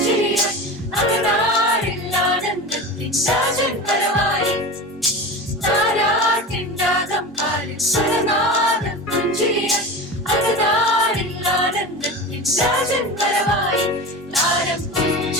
അകതാരിൽ ആനന്ദത്തിൻ രാജൻ വരവായി. താരാട്ടിൻ രാഗം പാടി സ്വരനാദം പുഞ്ചിരിയായി അകതാരിൽ ആനന്ദത്തിൻ രാജൻ വരവായി. താരം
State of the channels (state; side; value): normal; both; correlation 0.29